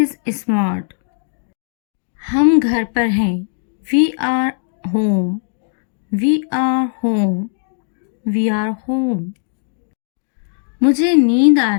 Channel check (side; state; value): right; silent; digital silence